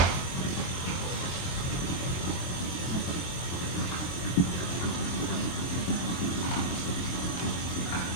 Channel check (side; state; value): right; late; 23 ms